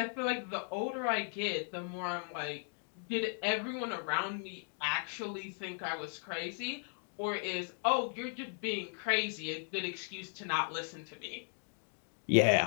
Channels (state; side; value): silent; right; 53 dB below the other